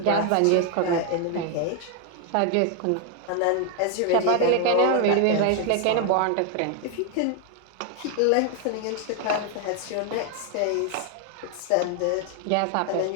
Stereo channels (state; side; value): different; both; correlation 0.01